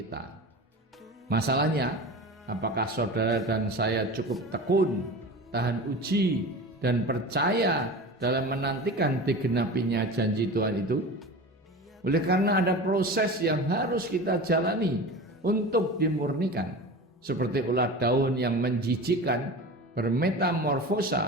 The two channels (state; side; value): normal; both; correlation 0.32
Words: Masalahnya, apakah saudara dan saya cukup tekun, tahan uji, dan percaya dalam menantikan digenapinya janji Tuhan itu? Oleh karena ada proses yang harus kita jalani untuk dimurnikan, seperti ulat daun yang menjijikkan